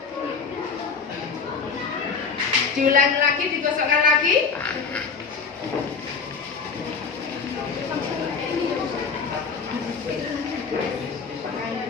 Diulangi lagi, digosokkan lagi.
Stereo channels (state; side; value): quieter; right; 5.4 dB